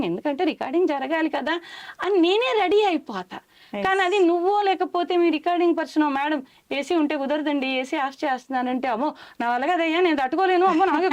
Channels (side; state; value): both; identical; correlation 1.00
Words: ఎందుకంటే రికార్డింగ్ జరగాలి కదా అని నేనే రెడీ అయిపోతా. కానీ అది నువ్వో లేకపోతే మీ రికార్డింగ్ పర్సన్, మేడం ఏసీ ఉంటే కుదరదండి, ఏసీ ఆఫ్ చేస్తున్నానంటే, అమ్మో నా వల్ల కదయ్యా నేను తట్టుకోలేను, అమ్మో నాకు